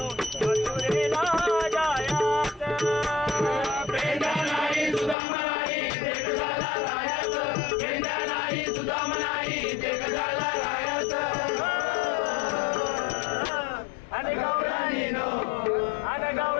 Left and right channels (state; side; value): drops out; right; at 5.2 s